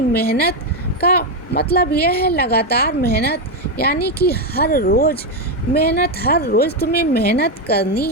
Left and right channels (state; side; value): normal; both; correlation 0.06